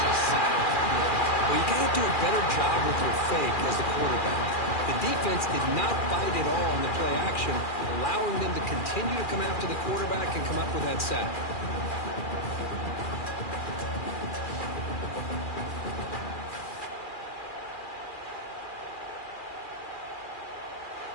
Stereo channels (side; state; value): right; late; 2.4 ms